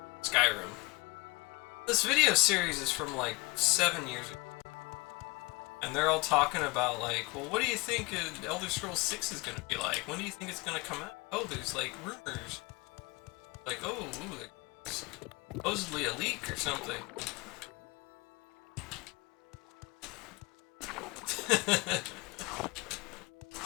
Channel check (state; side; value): quieter; right; 25.8 dB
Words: Skyrim. This video series is from like 7 years ago. And they're all talking about like, well, what do you think Elder Scrolls 6 is going to be like? When do you think it's going to come out? Oh, there's like rumors. Like, oh, ooh, there's supposedly a leak or something.